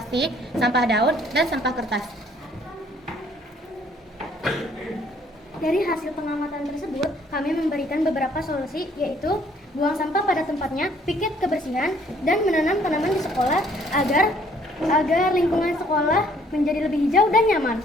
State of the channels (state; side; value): normal; both; correlation 0.62